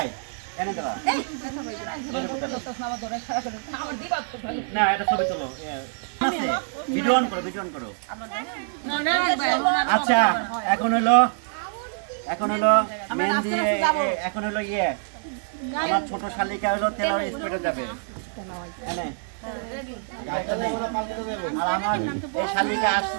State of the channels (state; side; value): silent; left; digital silence